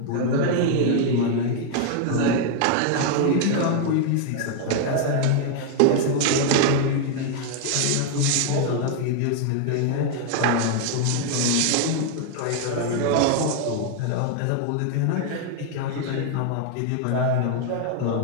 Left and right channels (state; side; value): different; both; correlation 0.00